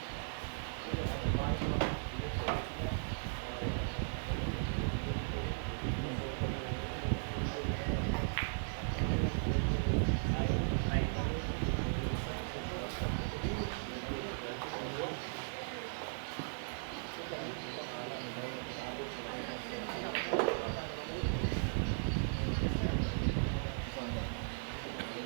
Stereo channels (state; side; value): silent; left; digital silence